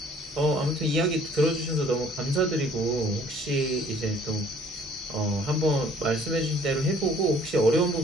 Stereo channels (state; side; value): normal; both; correlation 0.56